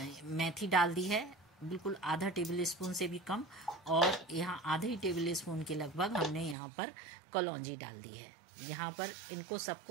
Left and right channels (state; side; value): drops out; left; at 6.6 s